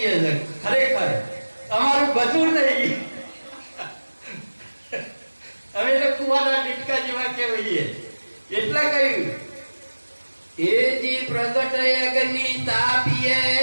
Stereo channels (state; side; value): inverted; both; correlation -1.00